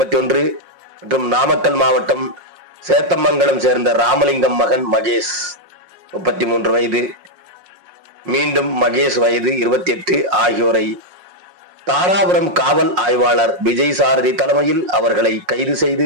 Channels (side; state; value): left; late; 5.5 ms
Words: மற்றும் நாமக்கல் மாவட்டம் சேத்தமங்கலம் சேர்ந்த ராமலிங்கம் மகன் மகேஷ் 33 வயது மீண்டும் மகேஷ் வயது 28 ஆகியோரை தாராபுரம் காவல் ஆய்வாளர் விஜய் சாரதி தலைமையில் அவர்களை கைது செய்து